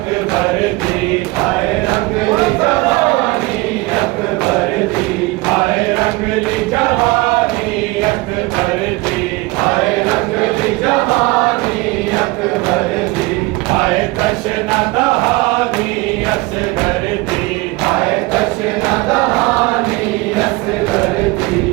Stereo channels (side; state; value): left; quieter; 22.5 dB